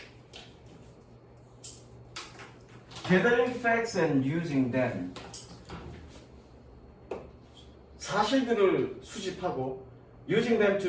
Gathering facts and using them. 사실들을 수집하고 using them to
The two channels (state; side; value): identical; both; correlation 1.00